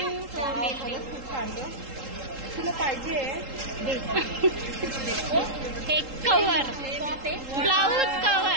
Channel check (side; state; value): left; late; 3.8 ms